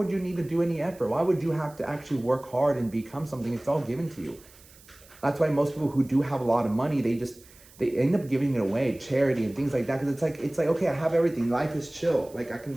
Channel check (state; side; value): noise; right; hiss, 24 dB below the sound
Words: you need to do any effort? Why would you have to actually work hard and become something? It's all given to you. That's why most people who do have a lot of money, they end up giving it away, charity and things like that. Because it's like, okay, I have everything. Life is chill. Like, I can